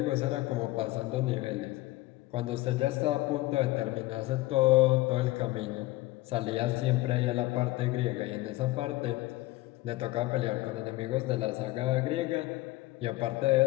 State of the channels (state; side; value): quieter; right; 18.8 dB